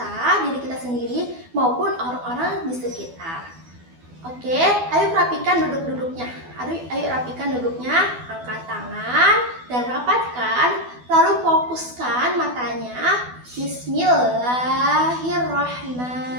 diri kita sendiri maupun orang-orang di sekitar. Oke, ayo rapikan duduk-duduknya. Ayo rapikan duduknya, angkat tangan dan rapatkan. Lalu fokuskan matanya.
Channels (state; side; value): late; left; 12 ms